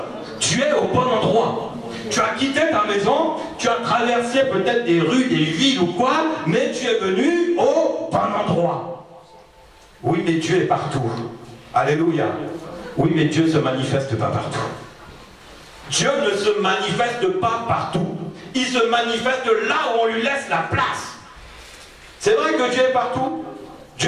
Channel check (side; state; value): both; identical; correlation 1.00